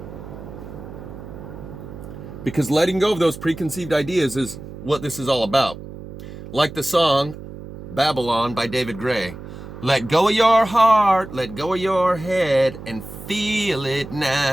Because letting go of those preconceived ideas is what this is all about. Like the song Babylon by David Gray. Let go of your heart, let go of your head, and feel it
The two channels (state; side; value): noise; right; hum, 13 dB below the sound